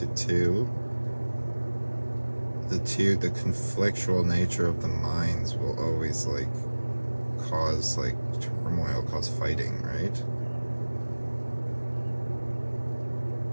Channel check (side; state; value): both; inverted; correlation -1.00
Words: two, the conflictual nature of the minds will always like cause like turmoil, cause fighting, right?